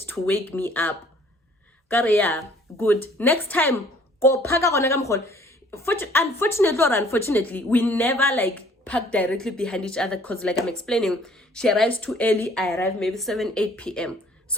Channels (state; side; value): normal; both; correlation 0.57